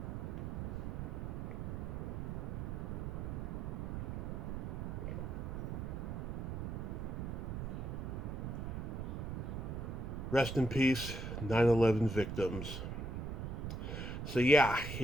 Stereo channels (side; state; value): right; noise; rumble, 4 dB below the sound